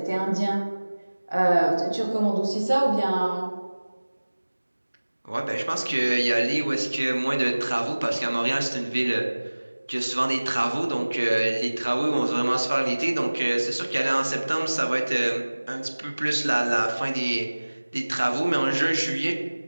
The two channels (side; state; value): both; inverted; correlation -1.00